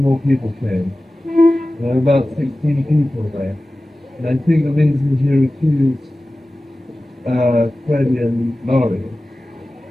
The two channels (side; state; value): both; normal; correlation 0.96